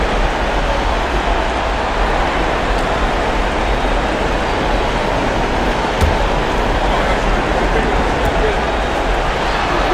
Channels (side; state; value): both; identical; correlation 1.00